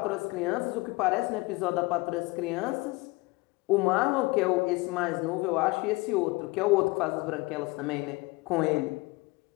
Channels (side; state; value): right; quieter; 23.8 dB